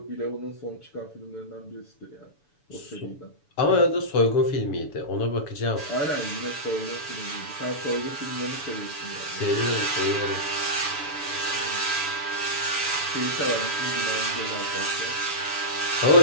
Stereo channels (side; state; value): right; late; 7.0 ms